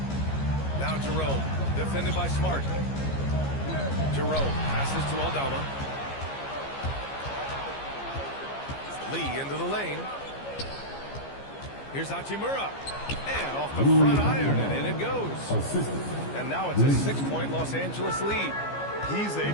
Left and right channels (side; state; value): right; late; 15 ms